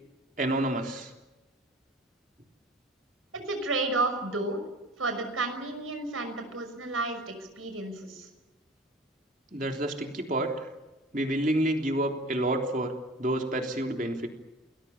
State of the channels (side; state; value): both; normal; correlation 0.40